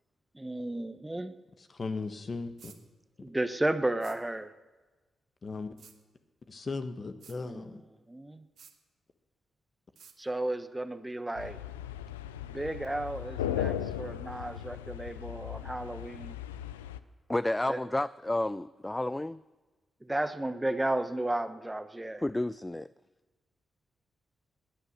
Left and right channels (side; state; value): both; normal; correlation 0.84